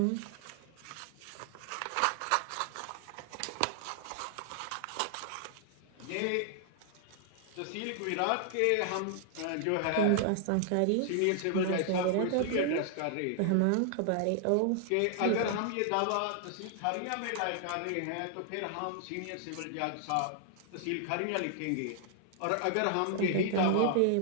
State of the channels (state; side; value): different; both; correlation -0.01